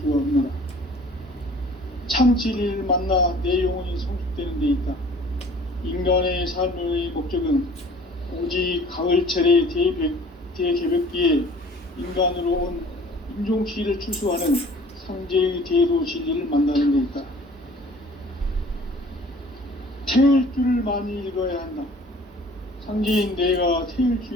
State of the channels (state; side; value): normal; both; correlation 0.50